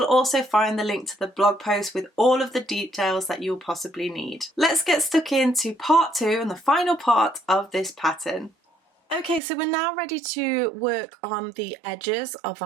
also find the link to the blog post with all of the details that you'll possibly need. Let's get stuck into part 2 and the final part of this pattern. Okay, so we're now ready to work on the edges of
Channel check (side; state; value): left; drops out; at 9.4 s